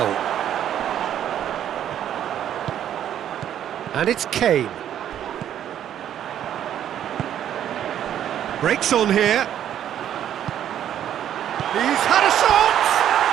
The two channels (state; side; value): quieter; left; 10.5 dB